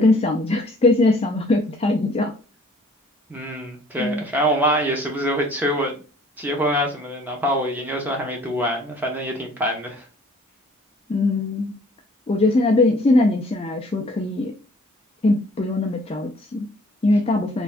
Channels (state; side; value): normal; both; correlation 0.56